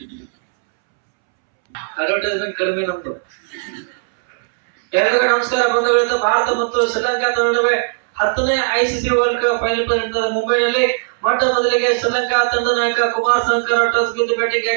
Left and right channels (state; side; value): silent; left; 68 dB below the other